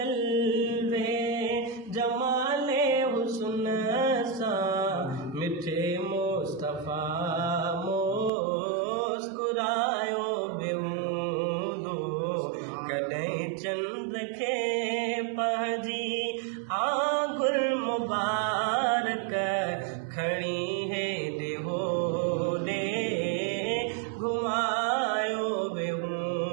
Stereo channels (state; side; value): drops out; left; at 8.3 s